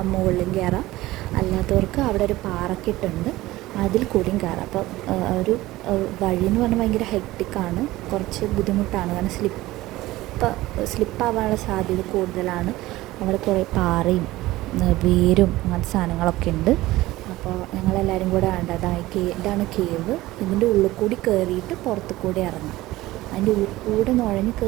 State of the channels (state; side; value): quieter; left; 17.7 dB